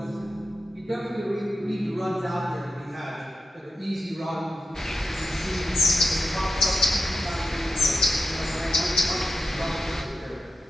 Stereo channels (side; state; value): both; normal; correlation 0.90